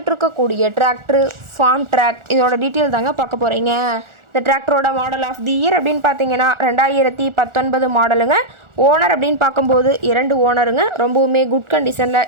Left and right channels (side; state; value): left; late; 1.4 ms